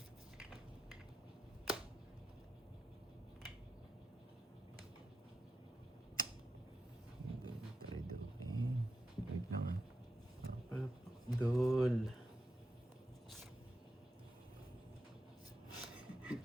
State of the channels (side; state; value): both; normal; correlation 0.88